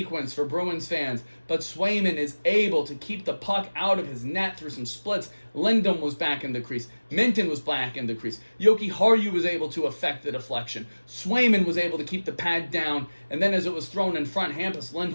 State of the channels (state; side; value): inverted; both; correlation -1.00